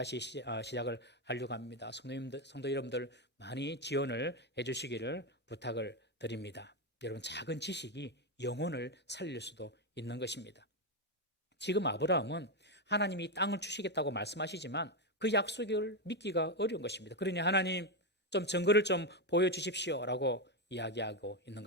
시작을 하려고 합니다. 성도 여러분들 많이 지원을 해주시기를 부탁을 드립니다. 여러분, 작은 지식이 영혼을 살릴 수도 있는 것입니다. 지금 아브라함은 하나님이 땅을 주시겠다고 말씀하시지만 그 약속을 믿기가 어려운 것입니다. 그러니 하나님 좀 증거를 좀 보여주십시오 라고 이야기하고 있는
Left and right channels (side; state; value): both; normal; correlation 0.07